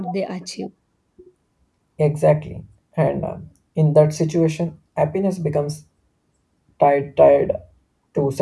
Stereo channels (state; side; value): identical; both; correlation 1.00